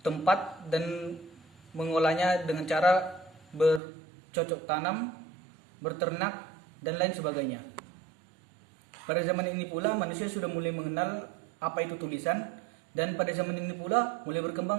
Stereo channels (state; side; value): drops out; left; at 3.8 s